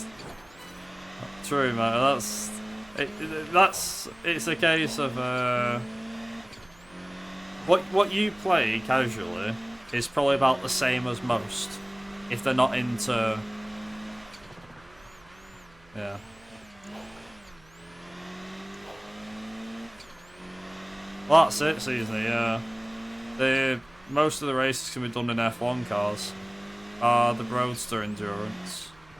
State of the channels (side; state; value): right; noise; hum, 27 dB below the sound